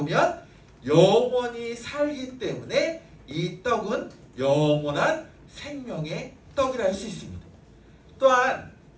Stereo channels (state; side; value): identical; both; correlation 1.00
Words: 영원히 살기 때문에 이 떡은 영원한 생명의 떡이라 할 수 있습니다. 또한